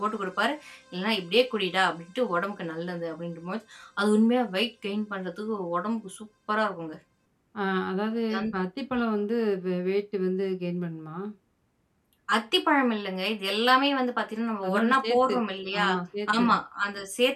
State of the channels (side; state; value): both; identical; correlation 1.00